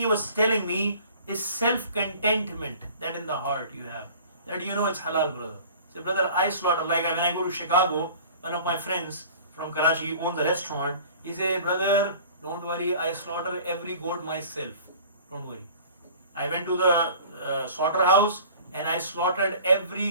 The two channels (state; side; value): inverted; both; correlation -0.46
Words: was telling me is self-contentment that in the heart you have. That it's halal, brother. So brother, I slaughter, like when I go to Chicago, one of my friends from Karachi owns a restaurant, he said, brother, don't worry, I slaughter every goat myself. Don't worry. I went to the slaughterhouse and I slaughtered